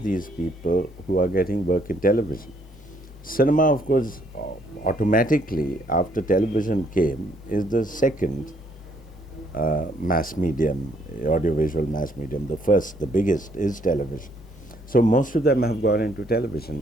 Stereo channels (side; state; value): both; normal; correlation 0.68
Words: these people who are getting work in television. Cinema, of course, automatically after television came, is the second mass medium, audiovisual mass medium. The first, the biggest, is television. So most of them have gone into